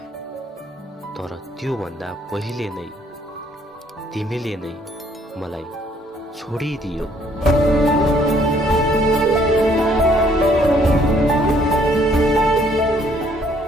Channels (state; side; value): normal; both; correlation 0.64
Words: तर त्योभन्दा पहिले नै तिमीले नै मलाई छोडिदियो।